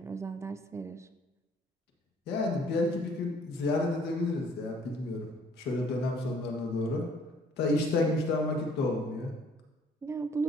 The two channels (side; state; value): both; normal; correlation 0.59